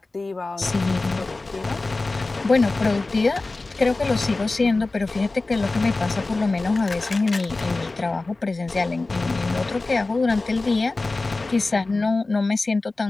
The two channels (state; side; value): quieter; right; 3.3 dB